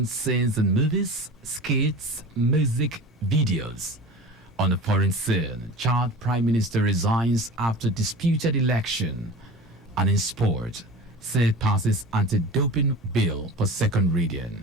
scenes in movies, skits, music, videos. On the foreign scene, Chad Prime Minister resigns after disputed election. And in sport, Senate passes anti-doping bill for second reading.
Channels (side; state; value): both; normal; correlation 0.35